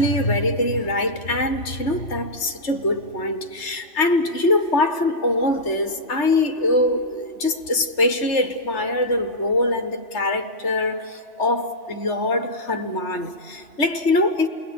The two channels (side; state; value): right; late; 3.3 ms